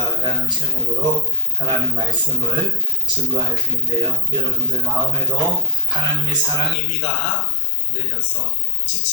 라는 제목으로 하나님 말씀을 증거할 텐데요. 여러분들 마음에도 하나님의 사랑의 비가 내려서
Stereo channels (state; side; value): drops out; right; at 6.8 s